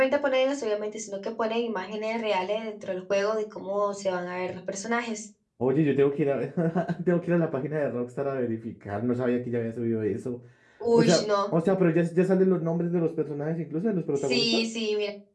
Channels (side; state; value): both; identical; correlation 1.00